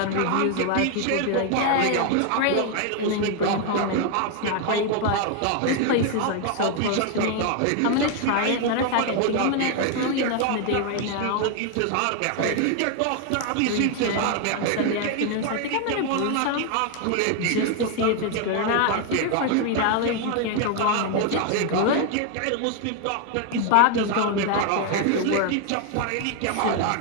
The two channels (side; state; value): both; different; correlation 0.01